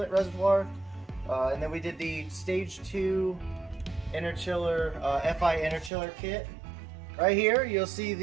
reservoir. And then we did the stage 2 Interchiller, FI Interchiller kit. Right here you'll see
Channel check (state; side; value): drops out; left; at 5.9 s